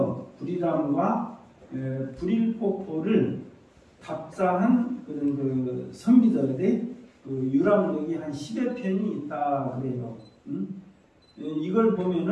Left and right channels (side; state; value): both; identical; correlation 1.00